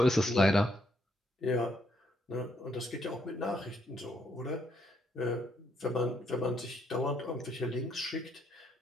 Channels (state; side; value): normal; both; correlation 0.73